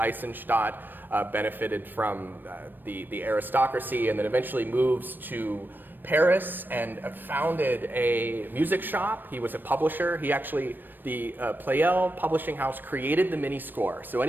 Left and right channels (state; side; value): late; left; 0.093 ms